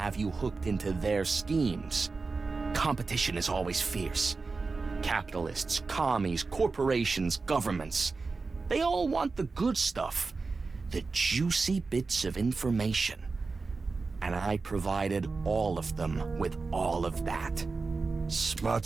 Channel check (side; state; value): left; quieter; 4.1 dB